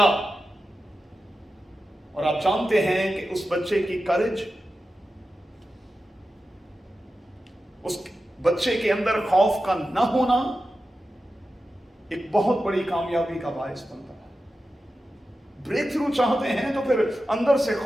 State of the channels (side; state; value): both; normal; correlation 0.92